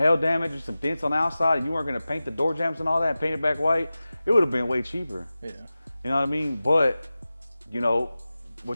damage or some dents on the outside, and you weren't gonna paint the door jams and all that and paint it back white, it would have been way cheaper. Yeah. You know what I mean? But, you know,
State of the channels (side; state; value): both; inverted; correlation -0.96